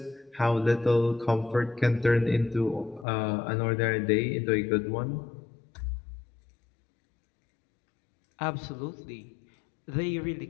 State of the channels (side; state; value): right; drops out; at 3.1 s